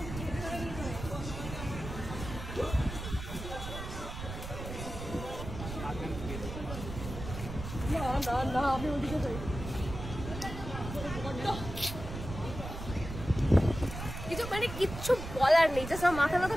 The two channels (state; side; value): noise; right; rumble, 8 dB below the sound